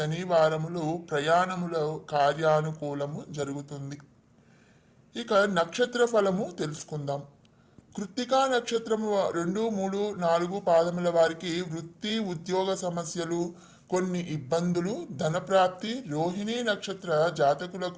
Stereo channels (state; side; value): identical; both; correlation 1.00